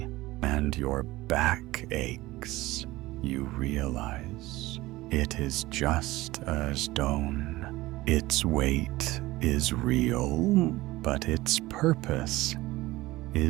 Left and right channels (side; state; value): left; quieter; 18.6 dB